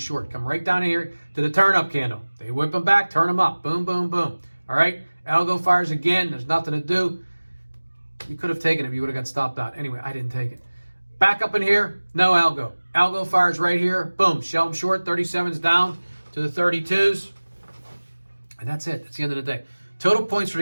Come right down here to the turn-up candle. They whip them back, turn them up. Boom, boom, boom. All right? Algo fires again. There's nothing to do. You could have taken it if you would have got stopped out. Anyway, I didn't take it. Back up in here, no algo. Algo fires right here. Boom, shell them short. 37s down to the 32s. And that's it. That's the end of the day. Total points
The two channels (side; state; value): both; inverted; correlation -1.00